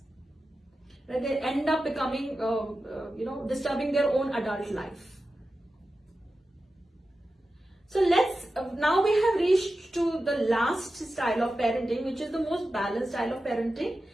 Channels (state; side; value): normal; both; correlation 0.92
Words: They end up becoming, disturbing their own adult life. So now we have reached to the last style of parenting, which is the most balanced style of parenting.